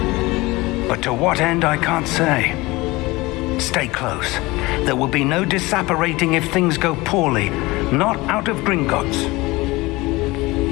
But to what end, I can't say. Stay close. There will be no disapparating if things go poorly. Not out of Gringotts.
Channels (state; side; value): quieter; right; 21.5 dB